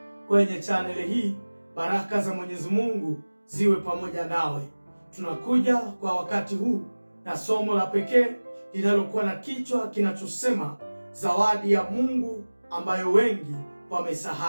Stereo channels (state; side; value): inverted; both; correlation -1.00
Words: kwenye chaneli hii. Baraka za Mwenyezi Mungu ziwe pamoja nawe. Tunakuja kwa wakati huu na somo la pekee linalokuwa na kichwa kinachosema zawadi ya Mungu ambayo wengi